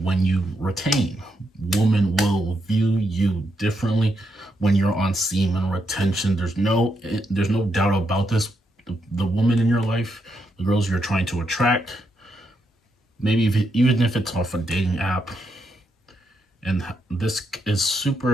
you retain. Women will view you differently when you're on semen retention. There's no doubt about this. The woman in your life, the girls you're trying to attract, maybe even if it's off a dating app, and this is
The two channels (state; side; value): normal; both; correlation 0.81